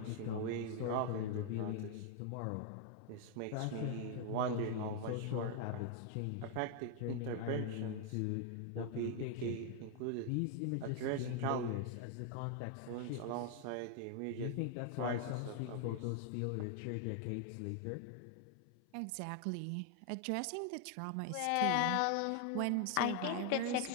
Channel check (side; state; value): both; different; correlation 0.00